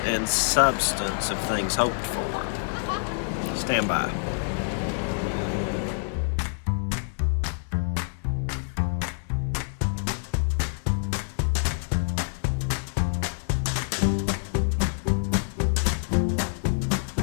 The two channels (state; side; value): silent; right; digital silence